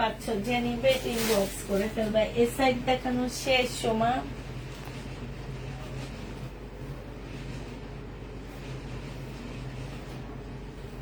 যে নিবে ইনবক্স করে ফেলবা। এ সাইড দেখানো শেষ সময়।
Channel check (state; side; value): identical; both; correlation 1.00